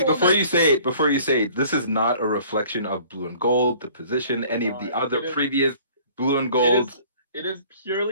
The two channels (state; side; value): inverted; both; correlation -0.53